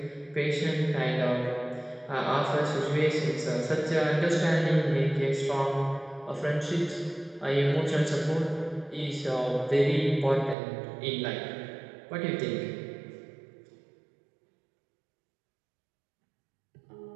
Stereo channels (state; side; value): drops out; left; at 10.6 s